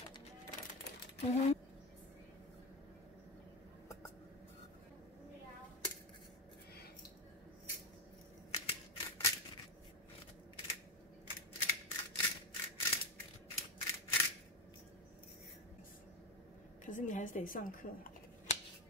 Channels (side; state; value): both; normal; correlation 0.14